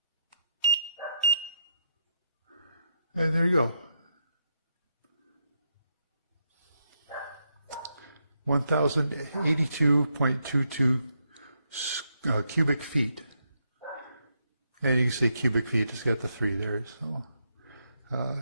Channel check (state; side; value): inverted; both; correlation -0.80